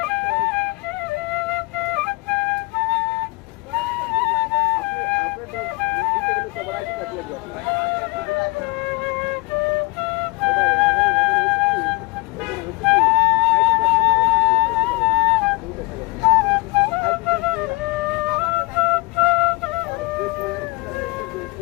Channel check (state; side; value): quieter; right; 25.4 dB